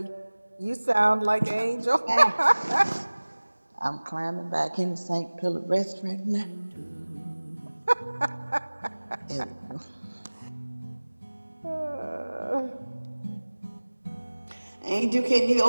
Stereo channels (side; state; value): both; inverted; correlation -1.00